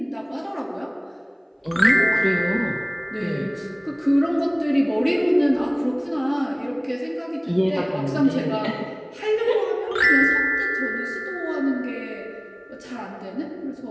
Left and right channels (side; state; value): both; identical; correlation 1.00